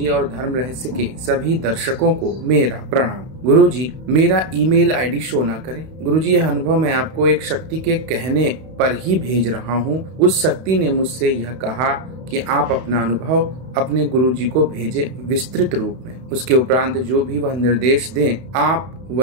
और धर्म रहस्य के सभी दर्शकों को मेरा प्रणाम। गुरुजी, मेरा ईमेल आईडी शो ना करें। गुरुजी, यह अनुभव मैं आपको एक शक्ति के कहने पर ही भेज रहा हूँ। उस शक्ति ने मुझसे यह कहा कि आप अपना अनुभव अपने गुरुजी को भेजें विस्तृत रूप में। उसके उपरांत जो भी वह निर्देश दें आप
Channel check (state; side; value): late; left; 31 ms